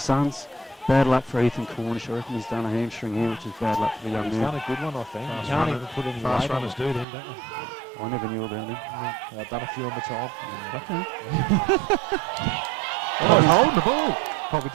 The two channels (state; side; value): drops out; left; at 7.1 s